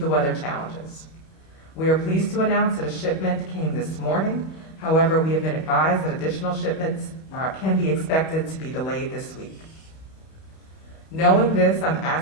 weather challenges. We are pleased to announce that a shipment came this morning. However, we have been advised that additional shipments can be expected to be delayed this week. Knowing this, I'm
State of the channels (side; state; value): right; late; 31 ms